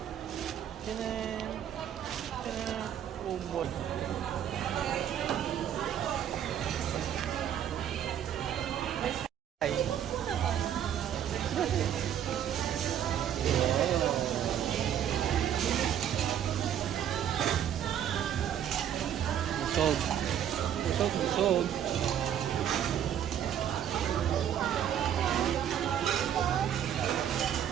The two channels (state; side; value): quieter; left; 9.9 dB